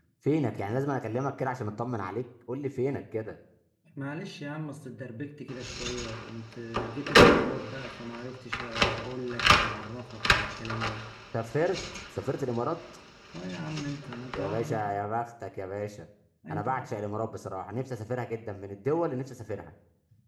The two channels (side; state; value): both; identical; correlation 1.00